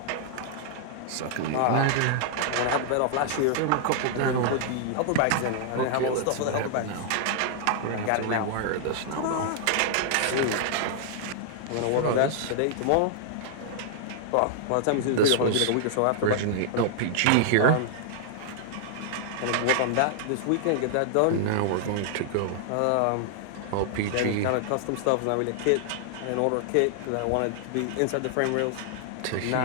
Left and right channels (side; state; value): both; different; correlation -0.01